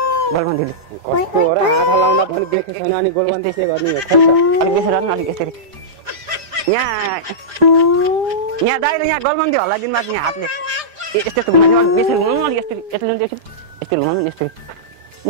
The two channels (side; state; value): left; late; 5.0 ms